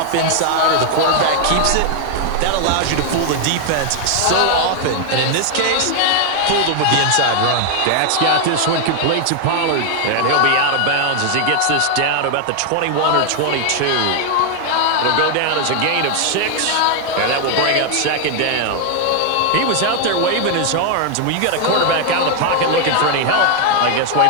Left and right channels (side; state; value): both; different; correlation 0.00